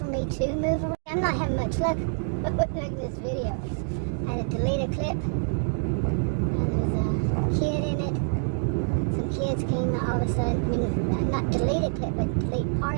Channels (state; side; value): silent; left; digital silence